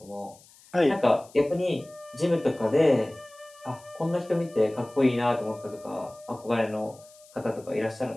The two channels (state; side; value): noise; left; hiss, 25 dB below the sound